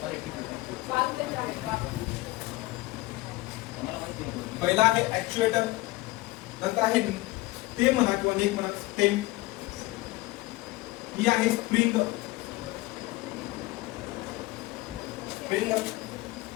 पहिला आहे ऍक्च्युएटर नंतर आहे स्टेम म्हणा किंवा नेक म्हणा स्टेम ही आहे spring spring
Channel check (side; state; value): right; quieter; 20.4 dB